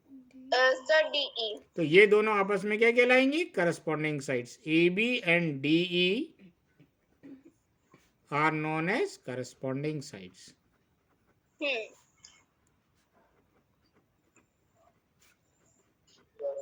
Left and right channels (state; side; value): identical; both; correlation 1.00